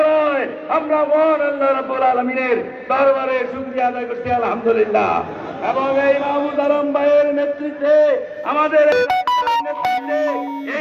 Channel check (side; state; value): both; identical; correlation 1.00